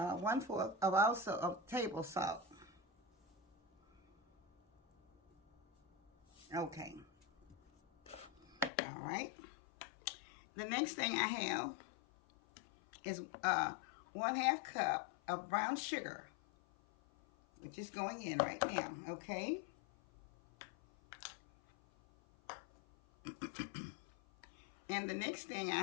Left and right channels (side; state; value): right; drops out; at 8.7 s